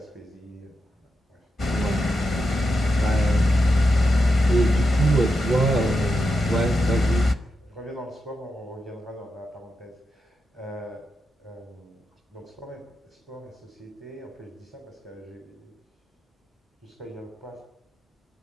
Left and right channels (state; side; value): normal; both; correlation 0.87